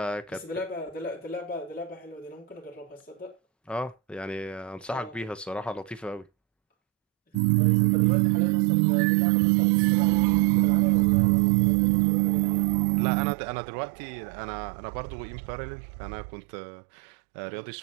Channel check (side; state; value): left; drops out; at 7.4 s